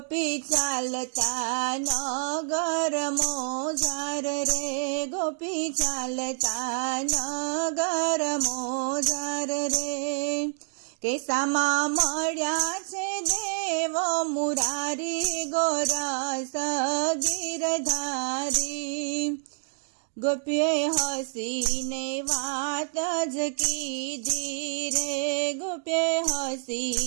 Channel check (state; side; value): silent; left; digital silence